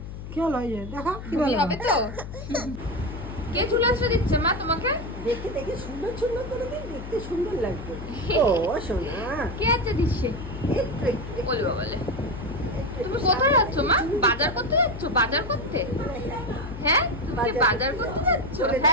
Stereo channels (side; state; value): left; noise; hum, 10 dB below the sound